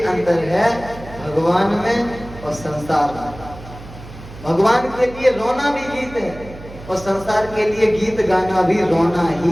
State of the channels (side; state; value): right; noise; hum, 16 dB below the sound